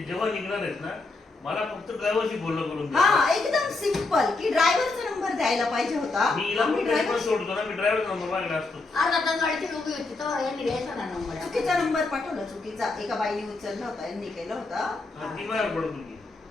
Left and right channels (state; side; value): quieter; right; 3.5 dB